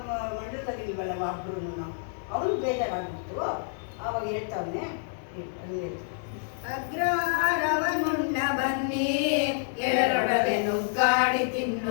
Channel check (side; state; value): right; silent; digital silence